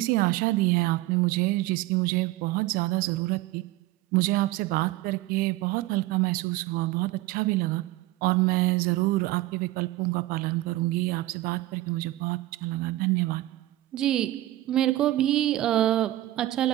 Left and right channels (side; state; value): left; quieter; 16.7 dB